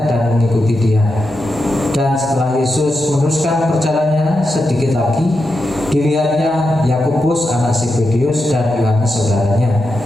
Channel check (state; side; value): normal; both; correlation 0.87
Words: dan mengikuti Dia. Dan setelah Yesus meneruskan perjalanannya sedikit lagi, dilihatnya Yakobus anak Zebedeus dan Yohanes saudaranya